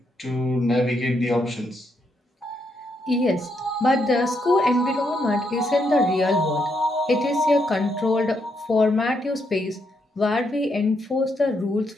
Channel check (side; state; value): both; normal; correlation 0.78